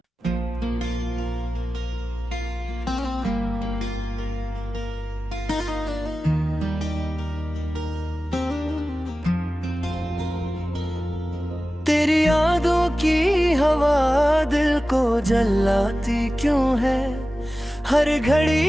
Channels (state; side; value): normal; both; correlation 0.95